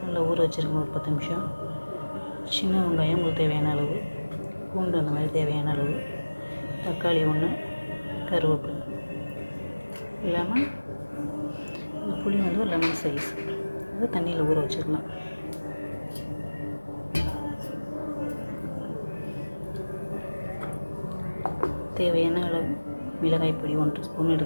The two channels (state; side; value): inverted; both; correlation -1.00